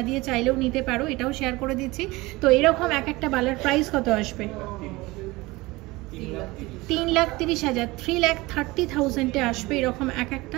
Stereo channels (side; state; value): left; quieter; 21.3 dB